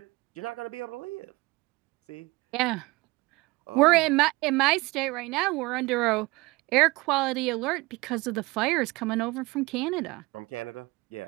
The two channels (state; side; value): quieter; left; 22.7 dB